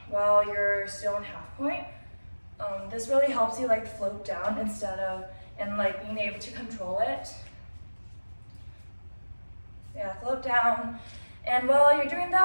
while you're still in half point. This really helps you like float down instead of, and like being able to control it. Yeah, float down. And while you're doing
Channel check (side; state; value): both; inverted; correlation -1.00